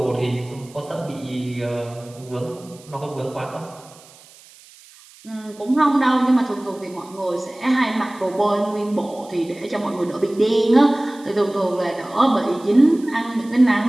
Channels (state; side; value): noise; right; hiss, 24 dB below the sound